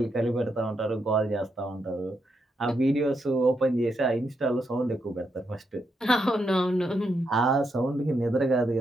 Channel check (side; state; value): both; normal; correlation 0.81